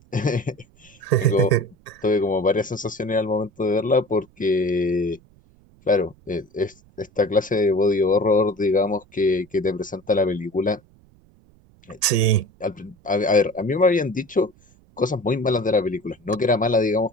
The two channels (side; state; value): right; noise; rumble, 29 dB below the sound